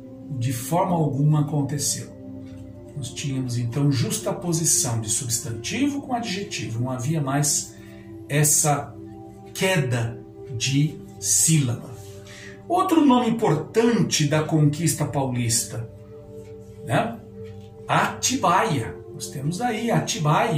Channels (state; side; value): identical; both; correlation 1.00